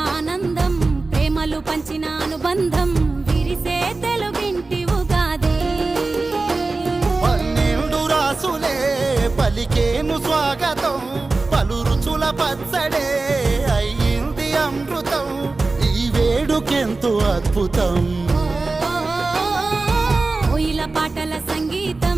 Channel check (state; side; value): quieter; left; 3.5 dB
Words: ఆనందం ప్రేమలు పంచిన అనుబంధం విరిసే తెలుగింటి ఉగాది 12 రాసులే పలికేను స్వాగతం పలు రుచుల పచ్చడే అయ్యింది అమృతం ఈ వేడుకెంతో అద్భుతం కోయిల పాటల సంగీతం